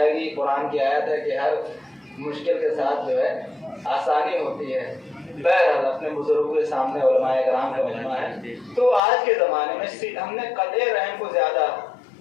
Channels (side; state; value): right; drops out; at 9.0 s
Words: گی۔ قرآن کی آیت ہے کہ ہر مشکل کے ساتھ جو ہے آسانی ہوتی ہے۔ بہرحال اپنے بزرگوں کے سامنے علماء کرام کا مجمع ہے۔ تو آج کے زمانے میں ہم نے قطع رحم کو زیادہ،